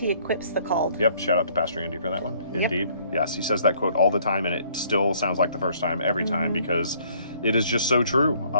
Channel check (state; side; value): inverted; both; correlation -0.61